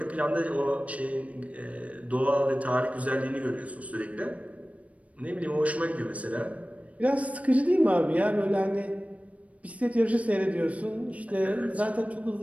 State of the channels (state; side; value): late; left; 0.066 ms